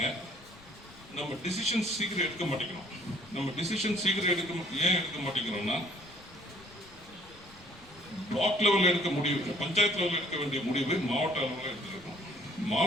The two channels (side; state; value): left; noise; rumble, 24 dB below the sound